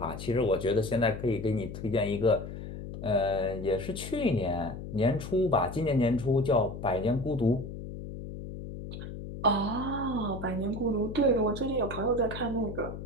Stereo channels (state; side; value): noise; left; hum, 9 dB below the sound